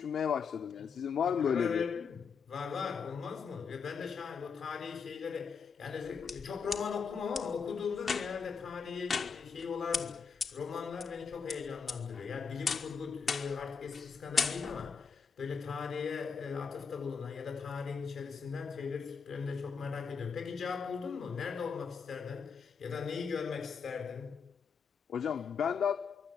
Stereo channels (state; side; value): quieter; right; 5.8 dB